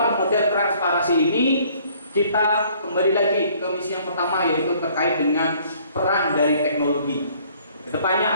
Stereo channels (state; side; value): inverted; both; correlation -0.59